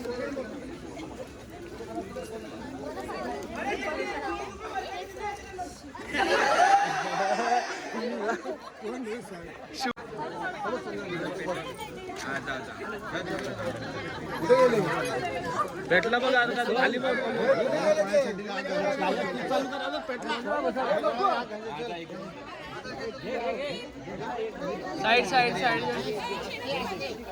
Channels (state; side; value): identical; both; correlation 1.00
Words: भेटला बघ आता खाली बघ. Side side side.